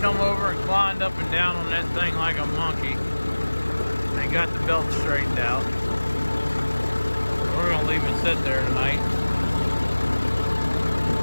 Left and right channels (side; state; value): both; inverted; correlation -1.00